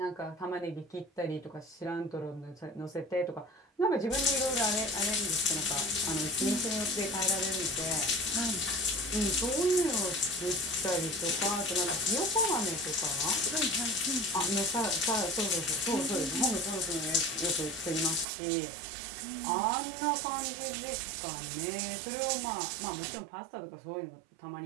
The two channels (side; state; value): left; drops out; at 18.2 s